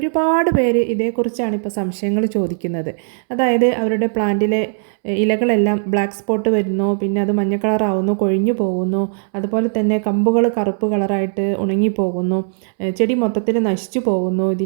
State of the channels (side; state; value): left; silent; 67 dB below the other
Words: പേര് ഇതേക്കുറിച്ചാണ് ഇപ്പോൾ സംശയങ്ങൾ ചോദിക്കുന്നത്. അതായത് അവരുടെ പ്ലാന്റിലെ ഇലകളെല്ലാം ബ്ലാക്ക് സ്പോട്ട് വരുന്നു, പിന്നെ അത് മഞ്ഞ കളറാവുന്നു, കൊഴിഞ്ഞു പോകുന്നു, അതുപോലെ തന്നെ കമ്പുകൾ കറുപ്പ് കളറായിട്ട് ഉണങ്ങിപ്പോകുന്നു, ചെടി മൊത്തത്തിൽ നശിച്ചു പോകുന്നു.